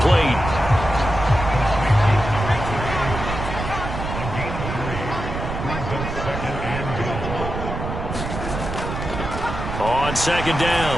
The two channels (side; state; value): right; noise; rumble, 6 dB below the sound